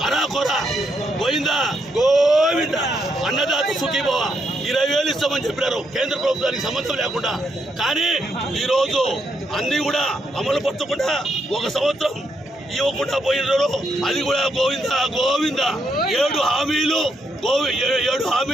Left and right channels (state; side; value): normal; both; correlation 0.78